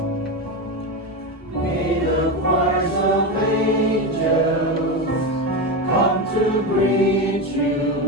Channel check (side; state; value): both; normal; correlation 0.16